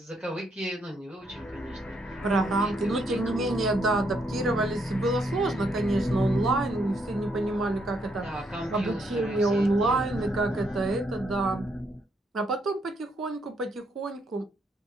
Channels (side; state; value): both; normal; correlation 0.74